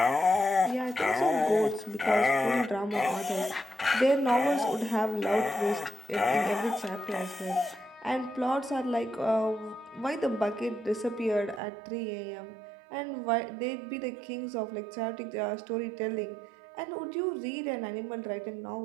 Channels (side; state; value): left; drops out; at 11.6 s